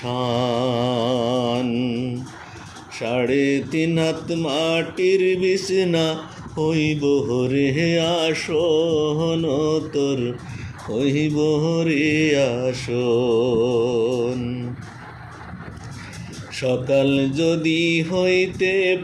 3.5 হাত মাটির বিছনা হইব রে আসন, তোর হইব রে আসন। সকাল যদি হইতে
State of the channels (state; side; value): identical; both; correlation 1.00